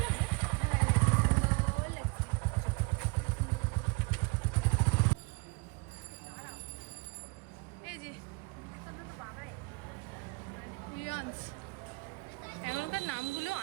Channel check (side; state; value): left; quieter; 28.8 dB